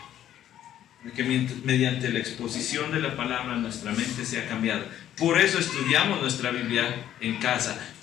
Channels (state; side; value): quieter; right; 11.4 dB